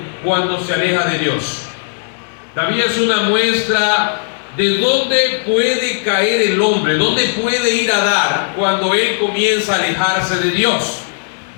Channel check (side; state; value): right; silent; digital silence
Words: cuando se aleja de Dios. David es una muestra de dónde puede caer el hombre, dónde puede ir a dar cuando él comienza a alejarse de Dios.